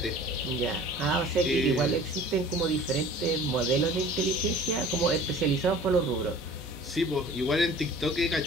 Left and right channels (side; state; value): both; normal; correlation 0.46